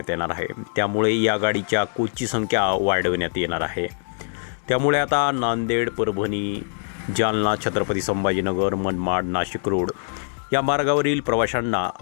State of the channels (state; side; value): silent; right; digital silence